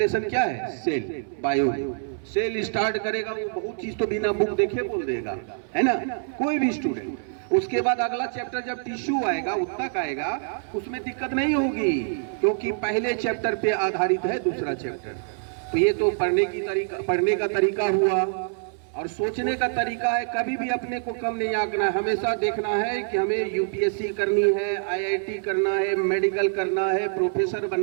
क्या है? Cell, bio. सेल स्टार्ट करेगा, वो बहुत चीज तो बिना बुक देखे बोल देगा, है ना, कोई भी स्टूडेंट। उसके बाद अगला चैप्टर जब टिश्यू आएगा, उत्तक आएगा, उसमें दिक्कत नहीं होगी, क्योंकि पहले चैप्टर पे आधारित है दूसरा चैप्टर। तो ये तो पढ़ने का तरीका हुआ। और सोचने का तरीका है, कभी भी अपने को कम नहीं आंकना है। हमेशा देखना है कि हमें यूपीएससी करनी है, आईआईटी करना है, मेडिकल करना है, प्रोफेसर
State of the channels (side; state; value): left; silent; 61 dB below the other